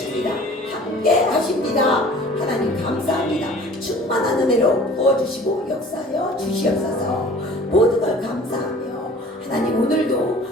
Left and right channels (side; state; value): both; normal; correlation 0.47